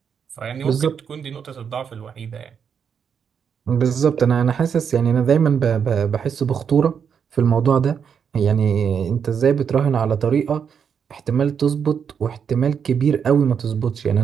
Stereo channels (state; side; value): quieter; left; 7.2 dB